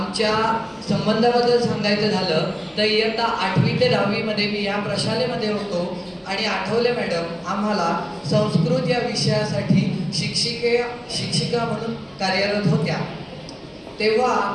संबंधाबद्दल सांगायचं झालं तर इयत्ता 8वी ते 10वी मध्ये मी या प्रशालेमध्ये होतो आणि आठवले मॅडम आम्हाला संस्कृत या विषयासाठी शिक्षिका म्हणून कार्यरत होत्या. तेव्हा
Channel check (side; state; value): both; identical; correlation 1.00